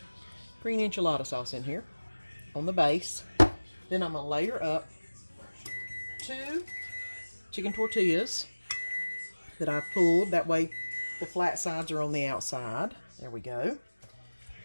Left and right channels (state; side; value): inverted; both; correlation -1.00